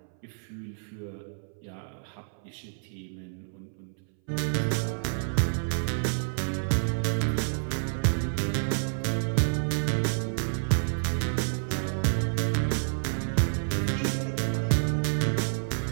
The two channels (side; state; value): left; silent; 59 dB below the other